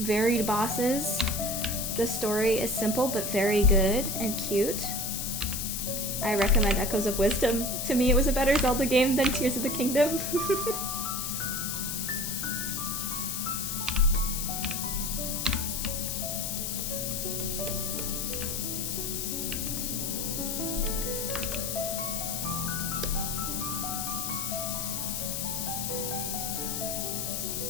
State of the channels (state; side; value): noise; left; hiss, 2 dB below the sound